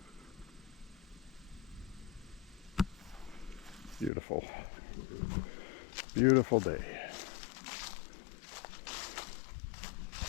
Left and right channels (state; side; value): drops out; right; at 4.1 s